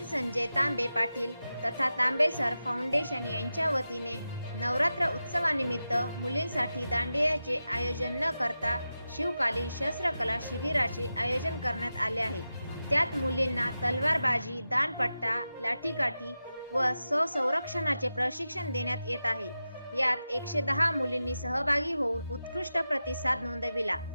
संजय तांबे पाटील तथा तांबे सर फाउंडेशन यांच्या वतीने नवरात्र उत्सवानिमित्त मुलींसाठी दांडियाचे आयोजन न करता शिवकालीन शस्त्रकला शिबिराचे आयोजन करण्यात आले आहे। त्यात मुलींना तलवारबाजी, दांडपट्टा, लाठीकाठी व स्वसंरक्षणाचे प्रशिक्षण देण्यात येत आहे। यात 110 मुलींनी सहभागी होऊन उत्कृष्ट प्रतिसाद नोंदविला।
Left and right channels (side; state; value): both; inverted; correlation -0.92